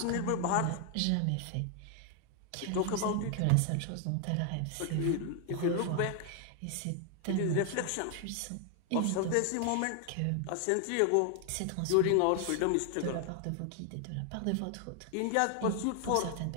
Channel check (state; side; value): different; both; correlation 0.00